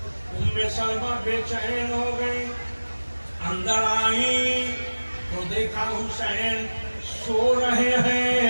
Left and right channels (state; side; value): inverted; both; correlation -1.00